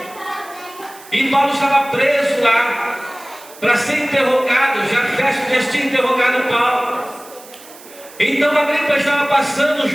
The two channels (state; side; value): noise; right; hiss, 20 dB below the sound